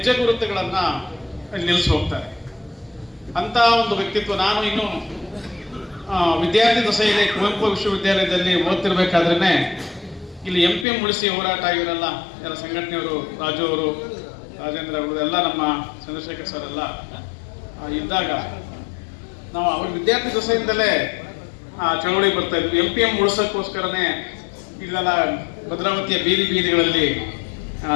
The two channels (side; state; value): right; drops out; at 10.9 s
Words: ಗುರುತುಗಳನ್ನು ನಿಲ್ಲಿಸಿ ಹೋಗ್ತಾರೆ. ಅಂಥ ಒಂದು ವ್ಯಕ್ತಿತ್ವ. ನಾನು ಇನ್ನು ವಿದ್ಯಾರ್ಥಿ ದಶೆಯಲ್ಲಿ ಕುವೆಂಪು ವಿಶ್ವವಿದ್ಯಾಲಯದಲ್ಲಿ ಓದ್ತಿರ್ಬೇಕಾದ್ರೇ ಇಲ್ಲಿ MPM ಉಳಿಸಿ ಹೋರಾಟ ಇವರೆಲ್ಲ ಎಲ್ಲ ಸಂಘಟನೆಯವರು, ರಾಜು ಅವರು, ರಾಜೇಂದ್ರ ಅವರು ಎಲ್ಲ ನಮ್ಮ ಚಂದ್ರಶೇಖರ್ ಸರ್ ಎಲ್ಲ ಇದ್ದಾಗ ನಾವು ಅವ್ರ ವಿದ್ಯಾರ್ಥಿ ದಶೆಯಿಂದಲೇ ಚಳವಳಿ ಬರ್ತಾ ಇದ್ವಿ. MPM ಉಳಿಸೋಕ್ಕೋಸ್ಕರನೇ ಇಲ್ಲೆಲ್ಲ ಭದ್ರಾವತಿಯ ಬೀದಿ ಬೀದಿಗಳಲ್ಲಿ